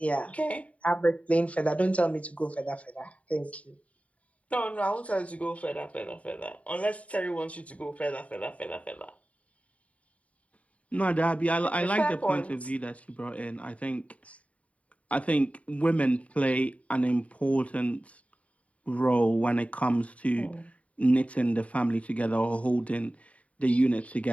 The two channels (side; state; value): right; late; 0.067 ms